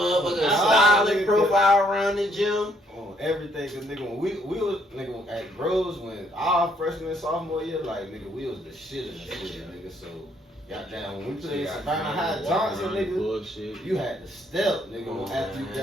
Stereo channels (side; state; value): both; normal; correlation 0.69